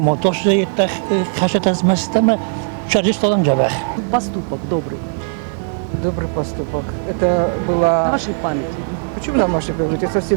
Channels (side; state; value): left; silent; 60 dB below the other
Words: ماتاش زیت خشت از مستم شرجش دادم جبه. Поступок добрый. Добрый поступок. Это было... На вашей памяти. Почему на вашей памяти? Это